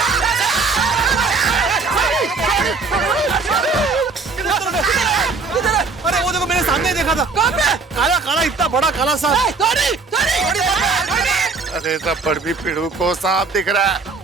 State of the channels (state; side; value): quieter; left; 4.3 dB